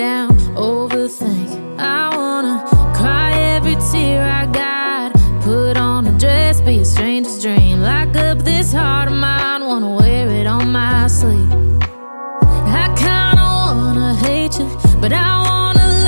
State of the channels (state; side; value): inverted; both; correlation -1.00